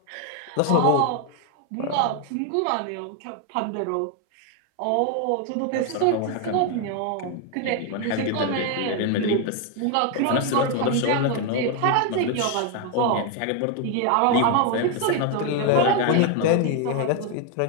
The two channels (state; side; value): different; both; correlation 0.01